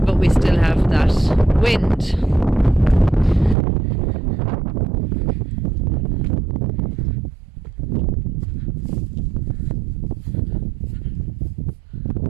but we still have that wind.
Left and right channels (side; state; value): left; drops out; at 3.6 s